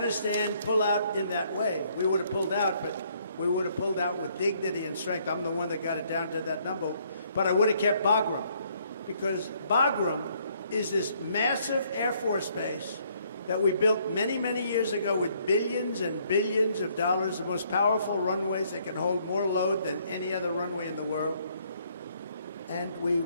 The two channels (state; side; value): inverted; both; correlation -0.67